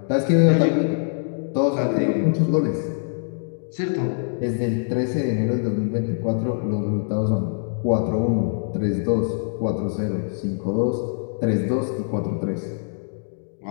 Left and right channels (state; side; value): silent; right; digital silence